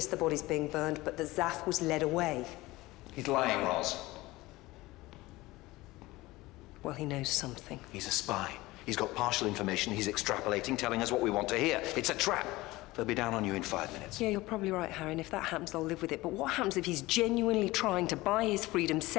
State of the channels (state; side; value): quieter; right; 19.6 dB